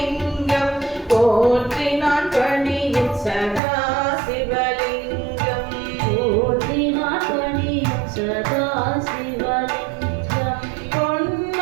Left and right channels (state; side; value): drops out; left; at 3.6 s